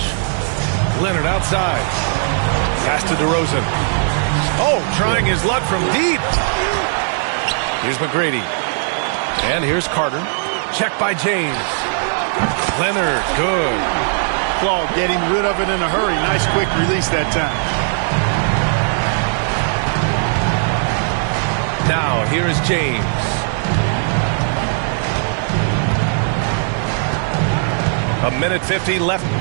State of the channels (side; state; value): left; silent; 67 dB below the other